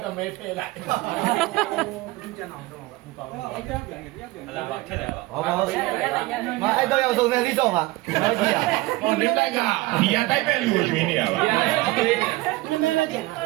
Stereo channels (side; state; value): left; quieter; 20.0 dB